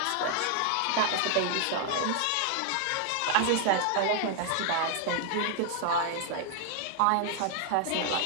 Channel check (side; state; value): both; different; correlation 0.00